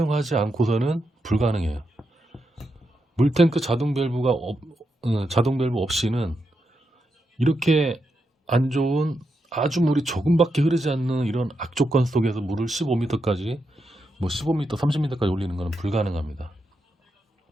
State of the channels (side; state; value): both; normal; correlation 0.84